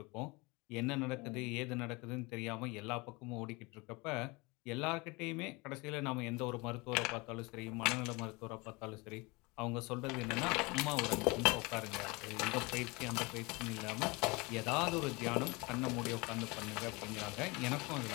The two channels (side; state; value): right; quieter; 25.8 dB